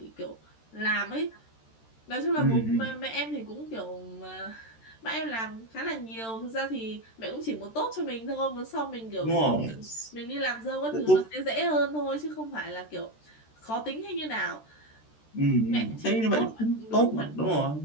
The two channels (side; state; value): right; late; 13 ms